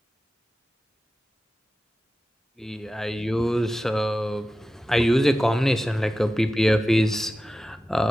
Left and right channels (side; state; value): both; normal; correlation 0.94